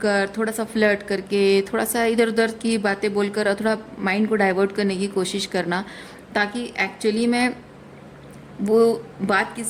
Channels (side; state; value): both; identical; correlation 1.00